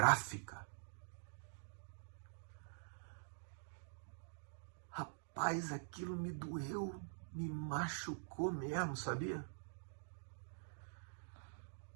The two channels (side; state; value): left; silent; digital silence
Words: Rapaz, aquilo me doeu, me machucou mesmo, sabia?